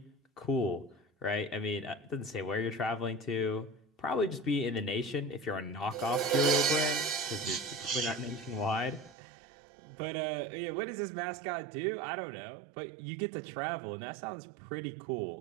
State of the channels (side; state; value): left; drops out; at 9.2 s